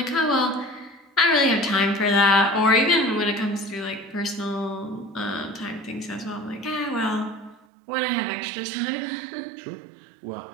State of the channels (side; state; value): left; drops out; at 7.6 s